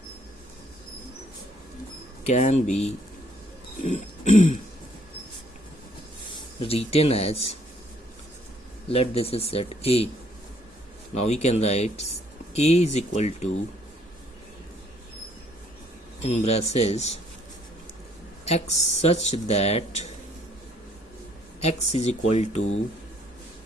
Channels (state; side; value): normal; both; correlation 0.64